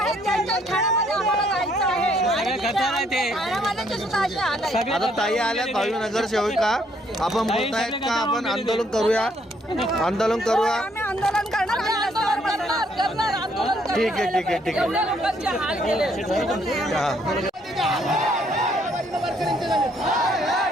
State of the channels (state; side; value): normal; both; correlation 0.68